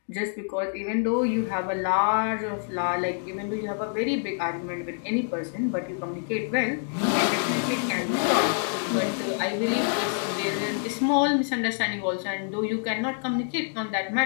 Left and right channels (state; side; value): silent; right; 60 dB below the other